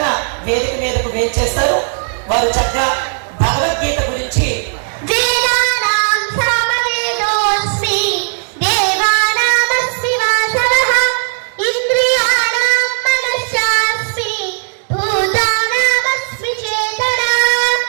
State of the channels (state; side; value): silent; left; digital silence